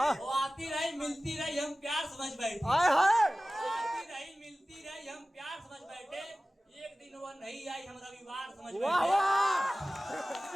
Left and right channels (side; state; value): both; normal; correlation 0.97